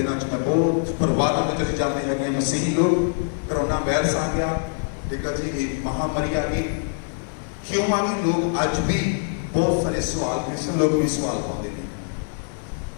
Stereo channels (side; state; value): right; silent; 63 dB below the other